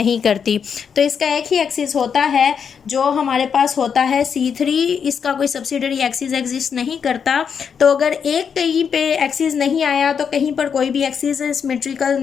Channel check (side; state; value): right; quieter; 6.9 dB